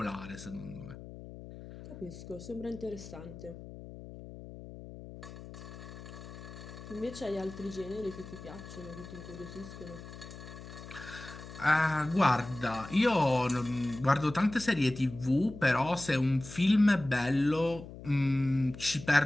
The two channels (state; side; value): noise; left; hum, 14 dB below the sound